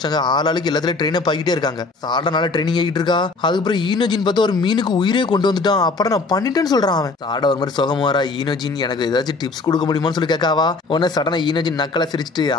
ஆளாளுக்கு எல்லாத்துலயும் ட்ரெயின் ஆகிட்டே இருக்காங்க. சாடனால ட்ரைனிங் ஆகிட்டு இருக்கா. அதுக்கப்புறம் ஈனோஜின் பார்த்தா ஒரு மீனுக்கு உயிரே கொண்டு வந்துட்டான். அப்புறம் நான் பண்ணிட்டேன்னு சொல்றான் அவன். சாட ஒரு மாதிரி சுகமா வரா. ஈனோஜின் எனக்கு ஏதாச்சும் டிப்ஸ் கொடுக்க முடியுமான்னு சொல்லி கேட்காவா. உடனே சடனா ஈனோஜின் நக்கலை சிரிச்சுட்டு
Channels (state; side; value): quieter; right; 3.8 dB